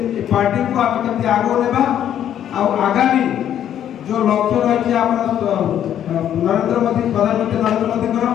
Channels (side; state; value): right; quieter; 10.3 dB